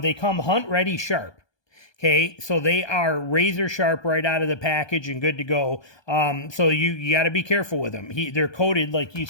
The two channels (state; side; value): late; right; 1.2 ms